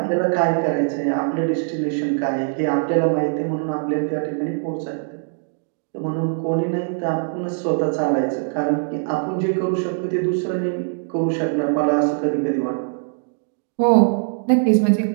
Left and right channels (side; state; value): left; silent; digital silence